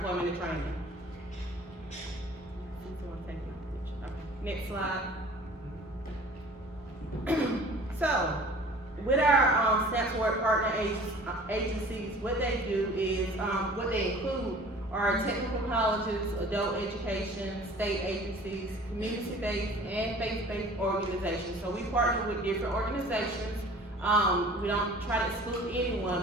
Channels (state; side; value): normal; both; correlation 0.47